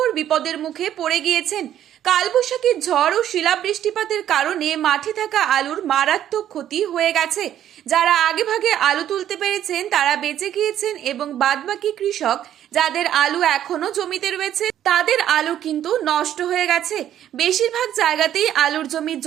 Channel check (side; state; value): left; quieter; 11.1 dB